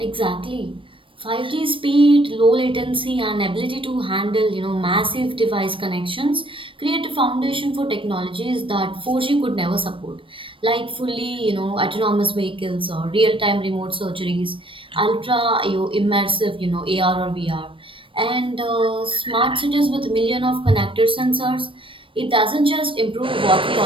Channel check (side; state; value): left; late; 0.25 ms